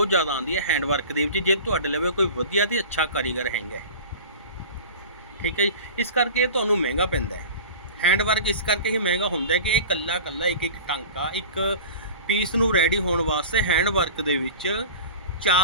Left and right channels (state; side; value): inverted; both; correlation -0.36